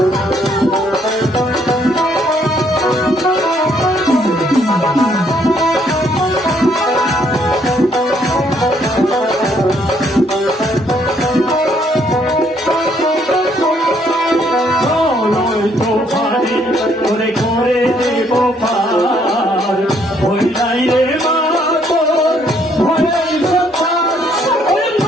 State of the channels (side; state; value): both; normal; correlation 0.68